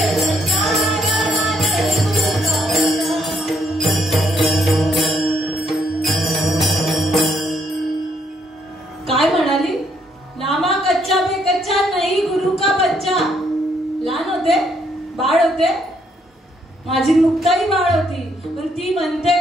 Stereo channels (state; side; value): normal; both; correlation 0.72